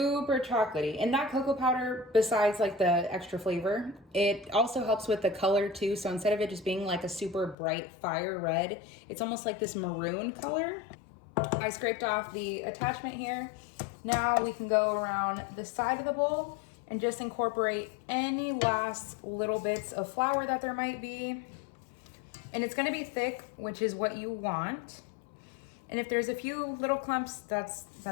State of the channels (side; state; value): right; drops out; at 7.6 s